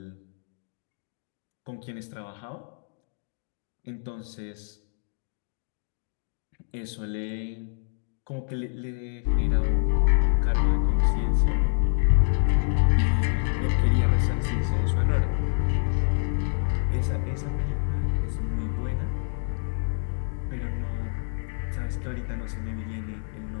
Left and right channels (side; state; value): right; silent; digital silence